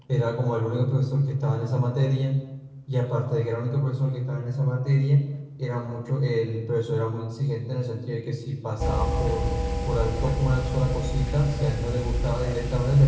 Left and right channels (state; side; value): identical; both; correlation 1.00